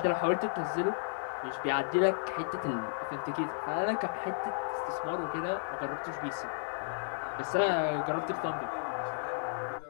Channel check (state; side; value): silent; right; digital silence